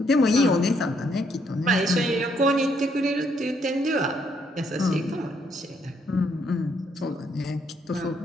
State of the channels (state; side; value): normal; both; correlation 0.72